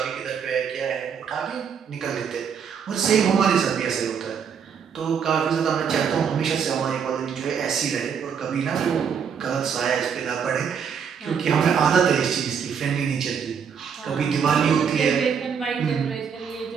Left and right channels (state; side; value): quieter; left; 7.1 dB